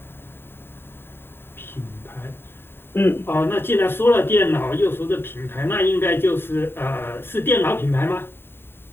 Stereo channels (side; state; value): right; late; 0.11 ms